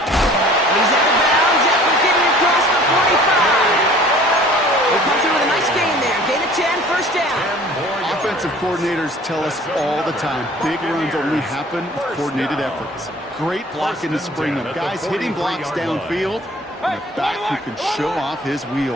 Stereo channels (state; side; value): normal; both; correlation 0.49